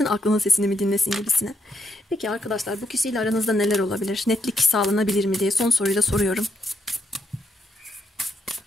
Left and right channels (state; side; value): normal; both; correlation 0.78